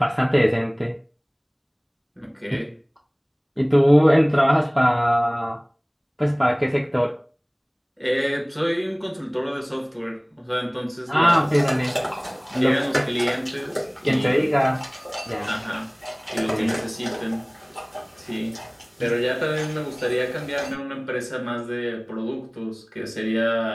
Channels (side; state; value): both; identical; correlation 1.00